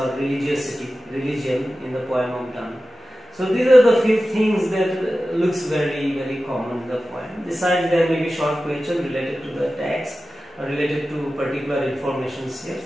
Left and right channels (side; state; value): both; normal; correlation 0.94